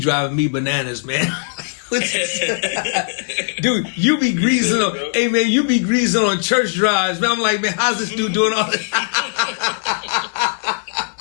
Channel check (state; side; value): silent; right; digital silence